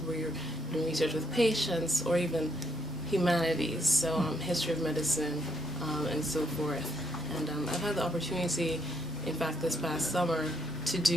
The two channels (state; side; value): normal; both; correlation 0.74